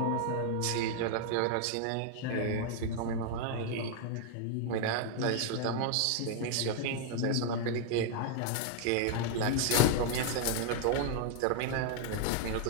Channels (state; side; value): different; both; correlation 0.00